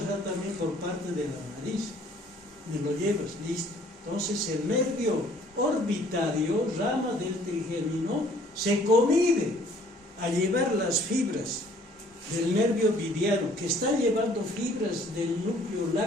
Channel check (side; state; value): both; normal; correlation 0.58